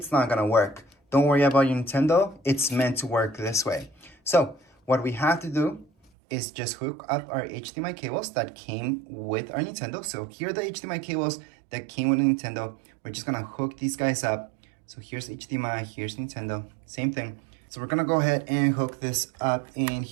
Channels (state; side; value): drops out; left; at 6.1 s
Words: not gonna work. Don't worry about your Nintendo. It's meant to work this way. So what we have to do is just hook up our HDMI cables that came with our Nintendo. So here are the HDMI cables that came with the Nintendo. We're just gonna hook these guys up. So here's HDMI, here's Nintendo, same thing. So we're gonna go ahead and hook this up in